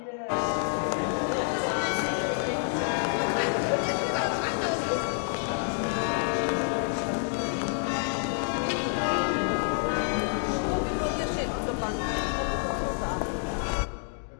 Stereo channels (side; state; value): right; silent; digital silence